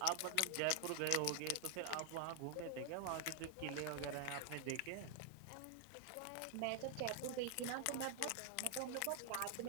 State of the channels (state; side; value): different; both; correlation 0.00